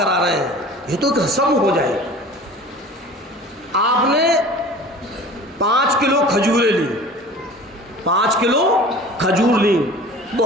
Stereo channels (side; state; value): both; normal; correlation 0.41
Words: رہے ہیں، یہ تو ایک رسم ہو جائے۔ آپ نے 5 کلو کھجوریں لی، 5 کلو کھجور لی،